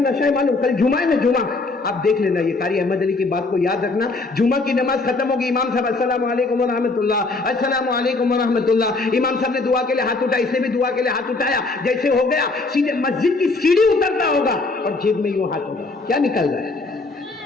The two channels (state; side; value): quieter; right; 3.5 dB